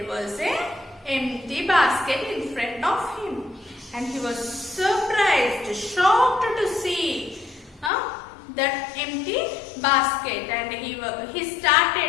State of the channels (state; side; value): drops out; right; at 7.9 s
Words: was an empty basket in front of him. And he was surprised, shocked to see that empty basket, and he